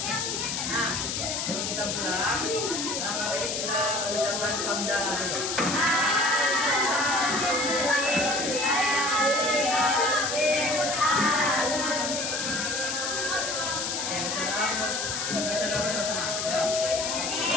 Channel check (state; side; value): noise; left; hiss, 1 dB below the sound